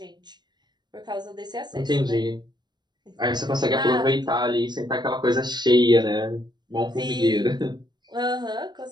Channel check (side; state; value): left; late; 0.21 ms